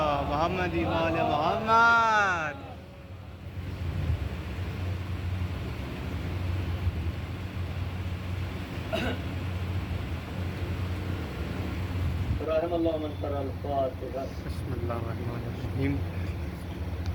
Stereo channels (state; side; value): identical; both; correlation 1.00